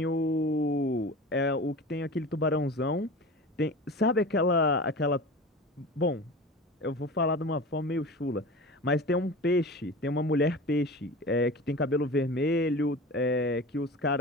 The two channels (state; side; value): normal; both; correlation 0.34